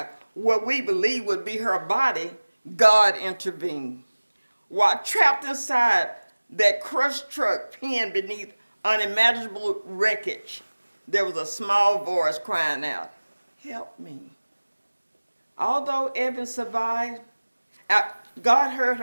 what we believed would be her body, God intervened. While trapped inside that crushed truck pinned beneath unimaginable wreckage, there was a small voice crying out, "Help me." Although Evan survived, God heard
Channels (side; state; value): both; inverted; correlation -1.00